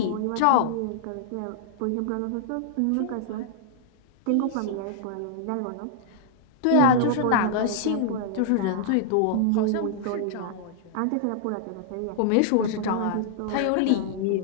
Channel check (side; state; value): both; different; correlation -0.01